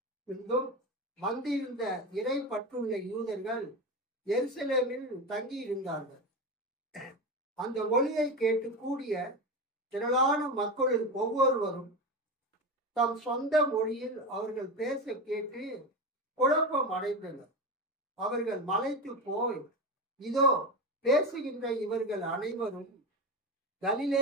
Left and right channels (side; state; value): both; normal; correlation 0.21